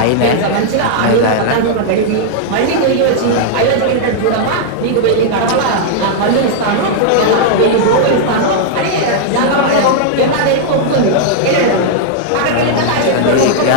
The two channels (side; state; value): both; different; correlation -0.01